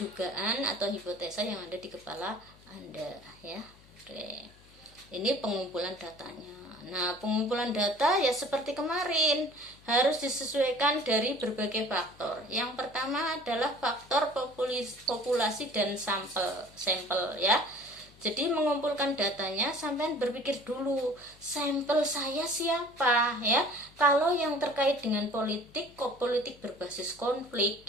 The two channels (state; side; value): noise; left; hum, 26 dB below the sound